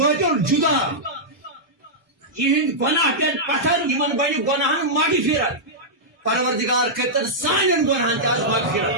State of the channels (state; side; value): normal; both; correlation -0.10